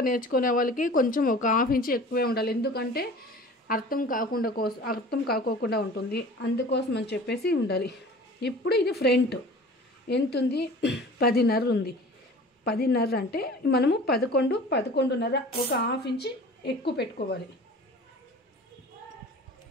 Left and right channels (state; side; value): normal; both; correlation 0.42